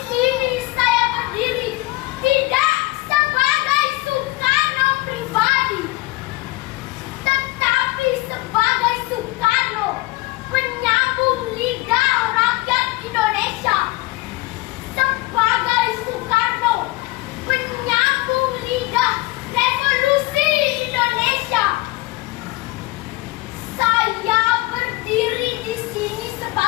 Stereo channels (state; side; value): quieter; right; 20.4 dB